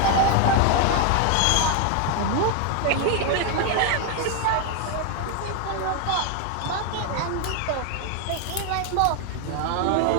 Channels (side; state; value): both; different; correlation 0.01